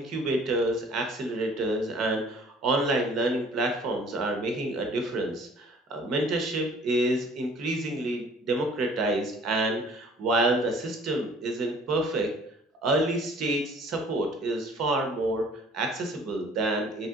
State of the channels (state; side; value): normal; both; correlation 0.53